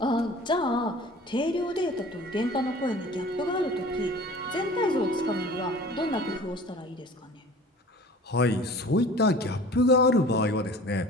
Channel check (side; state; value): both; normal; correlation 0.44